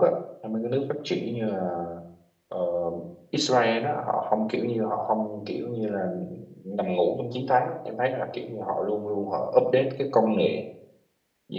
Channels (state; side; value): identical; both; correlation 1.00